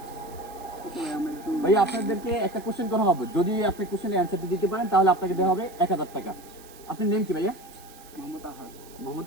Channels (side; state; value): right; noise; hiss, 22 dB below the sound